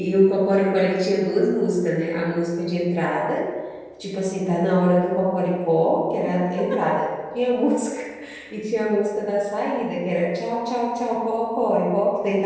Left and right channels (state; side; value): identical; both; correlation 1.00